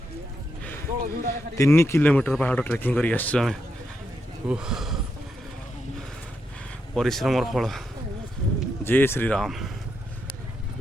3 किलोमीटर पहाड़ ट्रेकिंग कर आम परिश्रम फल। जय श्री राम।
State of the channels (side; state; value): both; normal; correlation 0.83